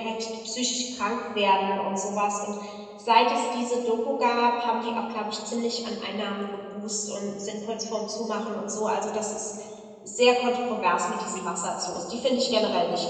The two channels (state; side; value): identical; both; correlation 1.00